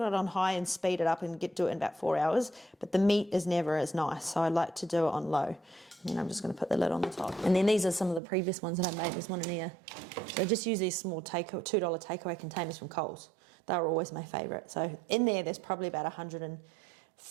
on high and speed it up and do it in about 4 hours, but the meat is never as nice, so I like to do it on low. And then I'm just going to put the lid on the top. And then these are some of the previous ones that I made. There's one in here. So I just use these small $2 takeaway containers from Coles. They were always my favourite. So in there's probably about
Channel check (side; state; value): left; drops out; at 8.2 s